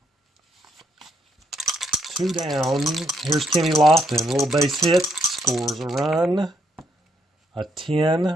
2 down. Here's Kenny Lofton. A little base hit. Scores a run. A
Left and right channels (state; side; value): normal; both; correlation 0.73